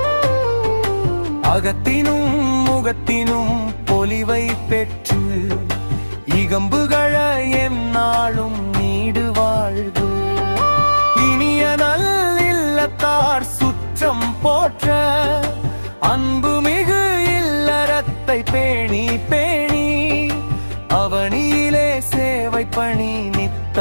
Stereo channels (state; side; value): inverted; both; correlation -1.00